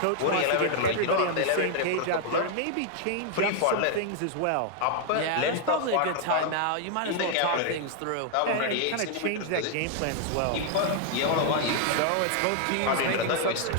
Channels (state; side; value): different; both; correlation 0.00